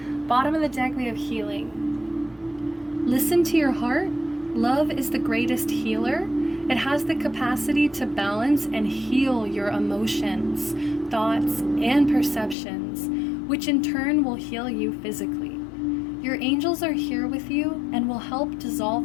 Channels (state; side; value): drops out; right; at 12.6 s